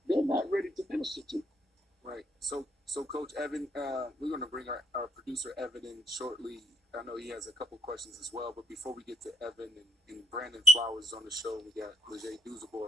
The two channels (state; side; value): normal; both; correlation 0.71